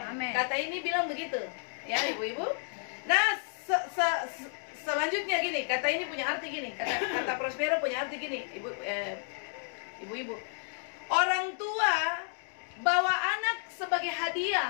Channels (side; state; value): right; silent; digital silence